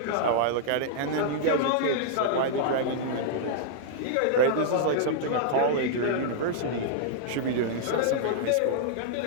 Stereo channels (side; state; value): both; different; correlation -0.02